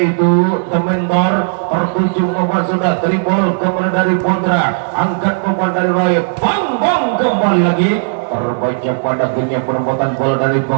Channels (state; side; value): silent; left; digital silence